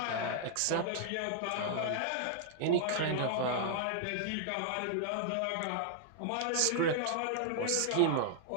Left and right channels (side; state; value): both; different; correlation -0.01